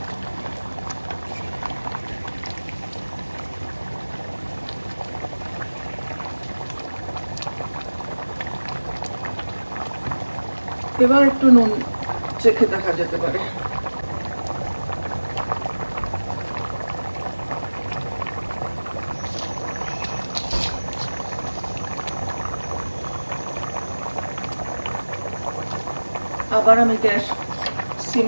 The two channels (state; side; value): inverted; both; correlation -1.00